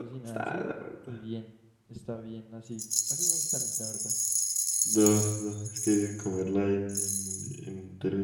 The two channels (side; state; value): both; identical; correlation 1.00